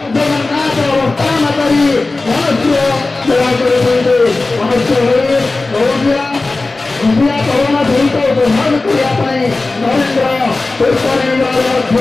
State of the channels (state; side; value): quieter; right; 3.4 dB